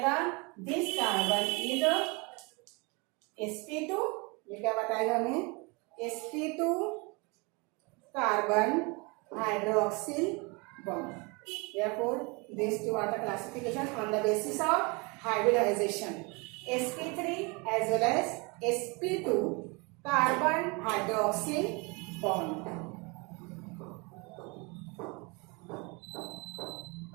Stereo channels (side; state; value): left; quieter; 28.8 dB